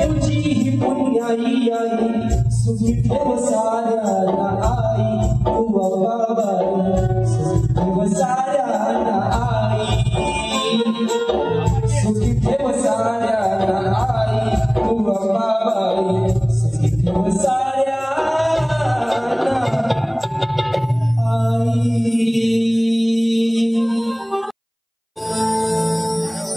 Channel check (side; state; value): both; identical; correlation 1.00